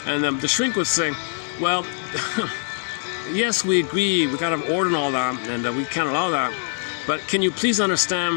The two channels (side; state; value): right; silent; 63 dB below the other